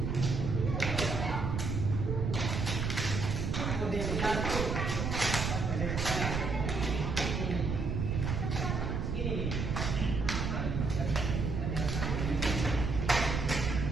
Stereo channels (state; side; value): noise; right; rumble, 1 dB below the sound